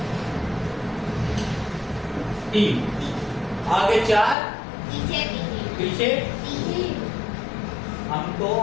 3 आगे 4 पीछे हमको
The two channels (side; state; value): right; drops out; at 4.4 s